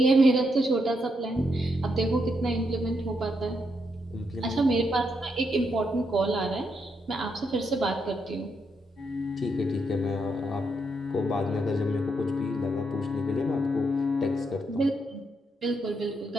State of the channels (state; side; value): normal; both; correlation 0.79